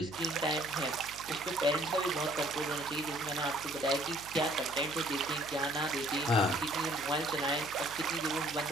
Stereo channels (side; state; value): right; noise; hum, 18 dB below the sound